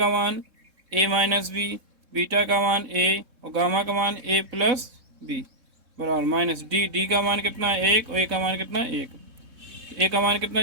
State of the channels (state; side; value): late; left; 3.7 ms